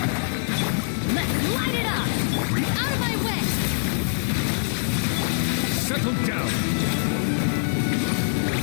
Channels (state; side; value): silent; right; 63 dB below the other